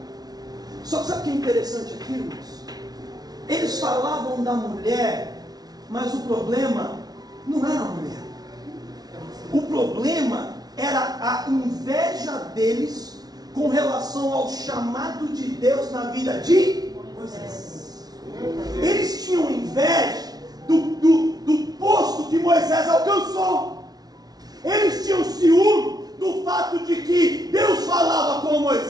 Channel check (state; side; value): late; left; 0.19 ms